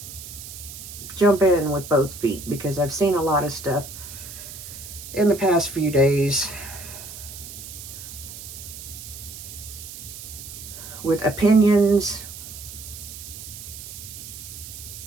jump in with both feet because I've seen a lot of stuff in the past few days with opinions.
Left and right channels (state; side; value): noise; right; hiss, 12 dB below the sound